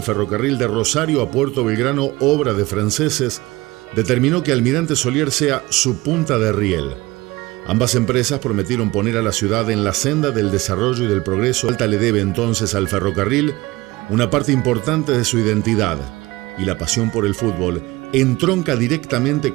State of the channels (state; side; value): quieter; left; 20.4 dB